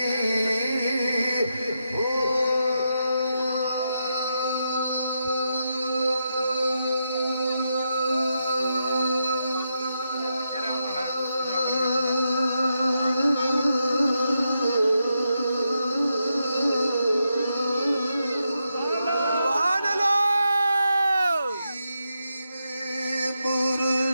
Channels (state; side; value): inverted; both; correlation -0.84